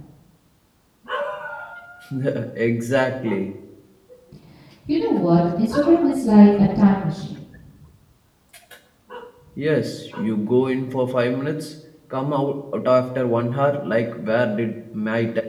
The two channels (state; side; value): identical; both; correlation 1.00